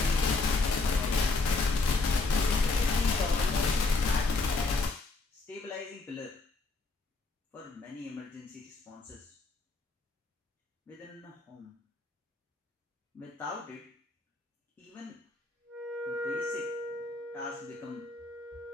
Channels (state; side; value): quieter; right; 3.6 dB